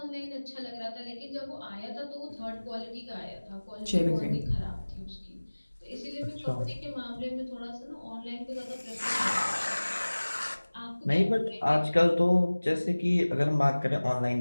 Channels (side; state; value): both; inverted; correlation -1.00